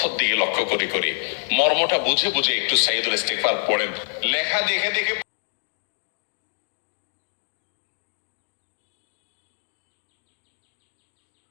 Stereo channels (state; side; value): silent; right; digital silence